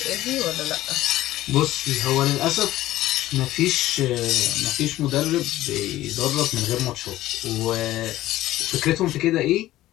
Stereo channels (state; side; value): quieter; right; 15.3 dB